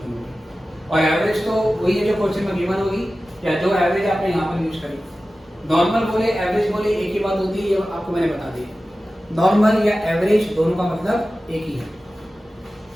होगी, और एवरेज तो वही है जो क्वेश्चन में गिवन होगी या जो एवरेज आपने यहाँ पर यूज करी। नॉर्मल बोले एवरेज बोले एक ही बात होती है, ये आपको मैंने बता दी। नॉर्मल या एवरेज दोनों का मतलब एक ही है।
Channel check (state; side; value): normal; both; correlation 0.95